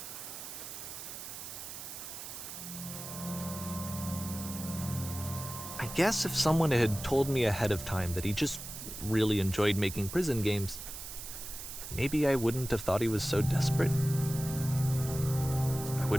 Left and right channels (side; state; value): right; noise; hiss, 9 dB below the sound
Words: I guess if someone had told me ahead of time that he just really enjoyed making prison games, maybe I wouldn't have thought he was so desperate. I